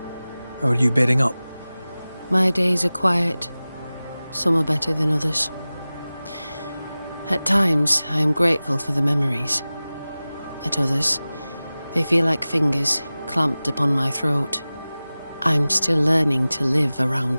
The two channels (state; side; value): inverted; both; correlation -0.97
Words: How are you bedding up? My days are quiet. Some are better than others. At times, I am grateful for the memories. At others, they feel like fingers clamped upon my throat. I'm still learning to live